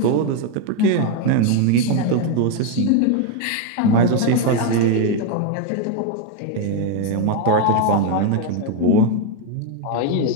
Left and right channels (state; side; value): different; both; correlation 0.01